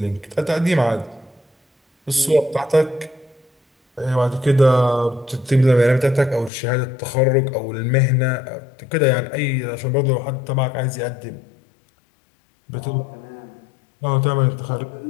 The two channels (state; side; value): drops out; right; at 6.5 s